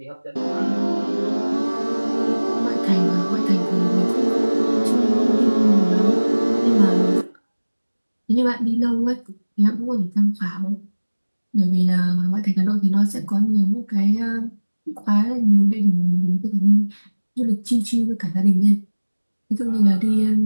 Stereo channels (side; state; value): both; inverted; correlation -1.00